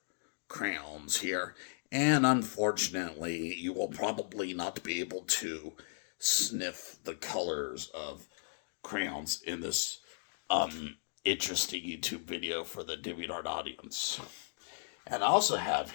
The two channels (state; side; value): silent; right; digital silence